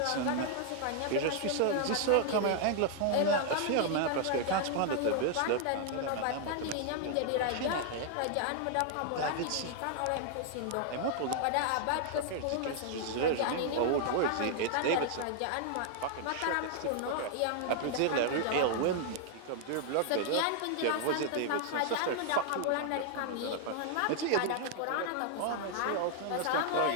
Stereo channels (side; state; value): both; different; correlation 0.00